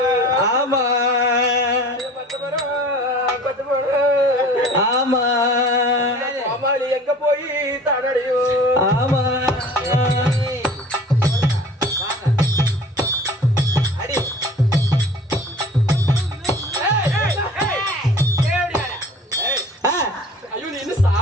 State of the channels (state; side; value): normal; both; correlation 0.45